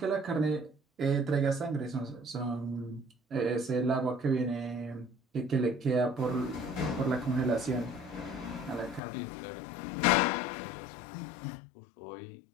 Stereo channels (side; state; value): right; drops out; at 9.0 s